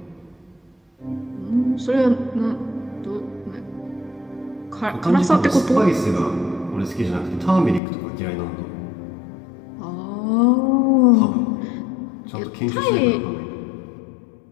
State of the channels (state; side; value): drops out; right; at 7.8 s